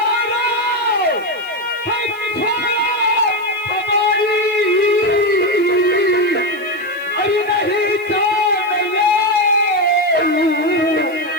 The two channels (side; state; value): left; noise; hiss, 26 dB below the sound